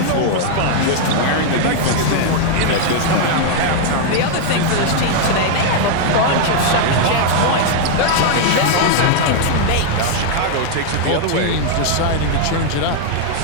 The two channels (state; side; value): different; both; correlation 0.00